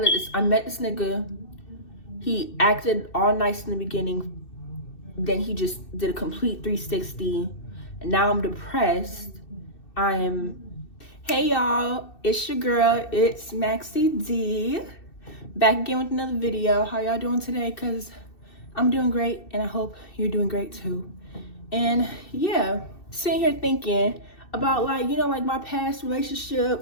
met this nigga. He acted all nice in the beginning. Then he just did a complete 360. And now I'm depressed. Hey y'all, it's your girl, it's Maxie D. Back again with another video. How y'all doing today? Cause I'm doing great and I hope you're doing great too. And yeah, sitting here thinking about like my past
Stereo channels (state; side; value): late; right; 2.6 ms